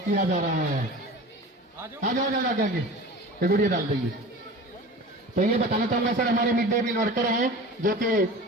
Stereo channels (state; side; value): normal; both; correlation 0.36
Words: जा रहा है। आ जाओ गुड़िया डाल देंगे। तो ये बताना चाहूंगा सर, हमारे मिड डे मील वर्कर हैं जो कि